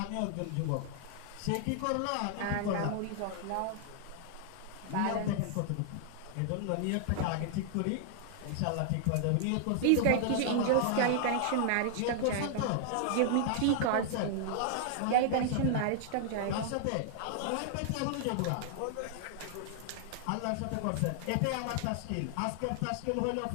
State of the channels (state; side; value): different; both; correlation -0.01